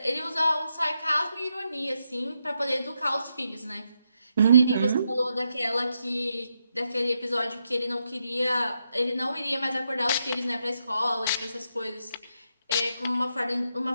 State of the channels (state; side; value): inverted; both; correlation -0.82